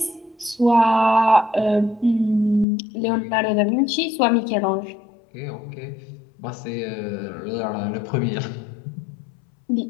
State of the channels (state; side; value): drops out; right; at 2.7 s